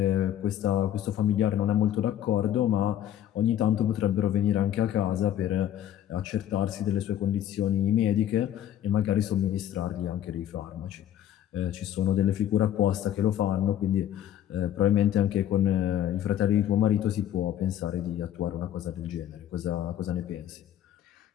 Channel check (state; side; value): quieter; right; 11.3 dB